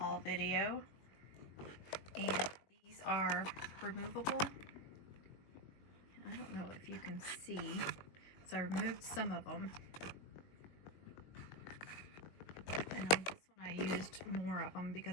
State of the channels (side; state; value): right; late; 21 ms